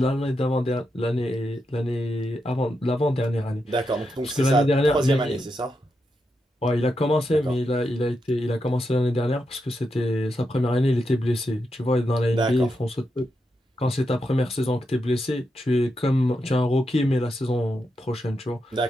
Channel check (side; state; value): both; normal; correlation 0.85